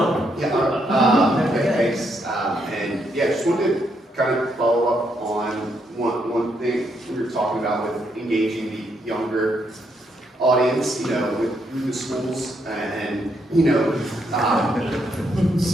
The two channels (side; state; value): both; normal; correlation 0.76